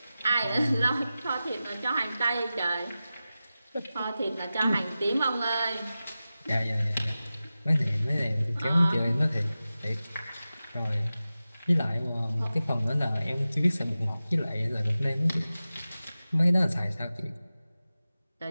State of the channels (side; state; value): both; inverted; correlation -0.94